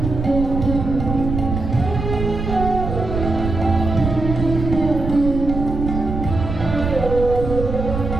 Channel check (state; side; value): noise; right; rumble, 4 dB below the sound